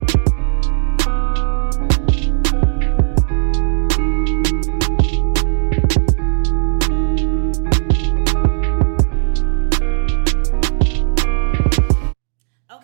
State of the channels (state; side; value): silent; left; digital silence